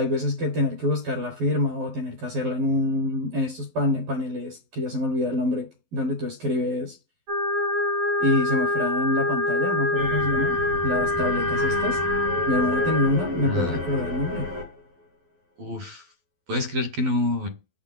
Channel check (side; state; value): left; late; 12 ms